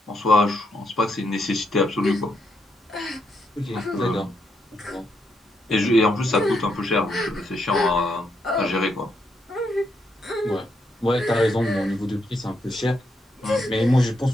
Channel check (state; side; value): normal; both; correlation 0.78